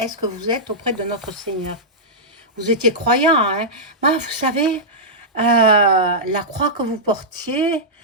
que vous êtes auprès de notre Seigneur? Vous étiez croyant, hein? Moi, vous savez, la croix que vous portiez,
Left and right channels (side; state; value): both; normal; correlation -0.11